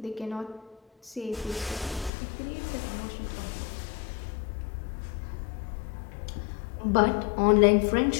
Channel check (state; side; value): drops out; right; at 2.1 s